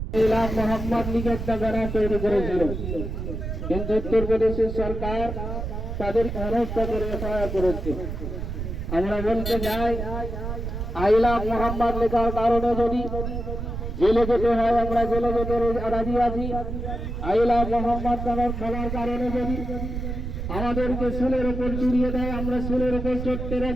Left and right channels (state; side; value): noise; right; rumble, 5 dB below the sound